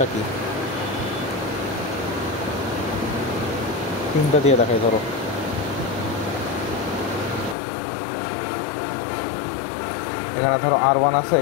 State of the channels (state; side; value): drops out; right; at 7.6 s